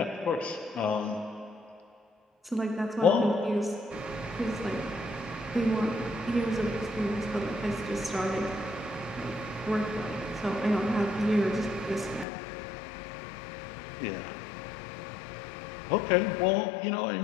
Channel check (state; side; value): drops out; right; at 12.2 s